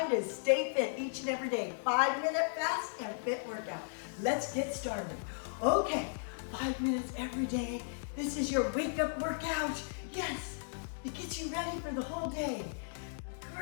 to stay fit each and every day. 5-minute fast and fit workout. Let's get started. Okay, 5 minutes every day. This is your wake up workout. Yes, it gets you ready for the whole day.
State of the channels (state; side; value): silent; right; digital silence